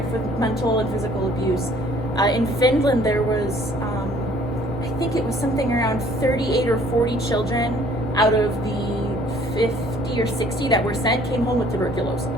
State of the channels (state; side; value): normal; both; correlation 0.57